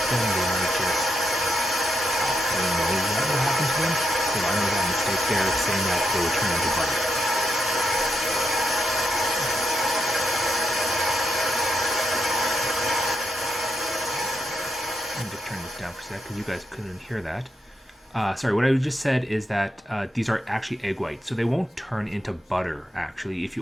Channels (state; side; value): normal; both; correlation 0.82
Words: them. They might just, I don't know what will happen to them. So I made that mistake there, saying that they would turn into butter. Let me just turn this down for a sec because you guys couldn't hear that. Sorry, what I just said is that these are actually egg whites, so they won't turn into butter actually if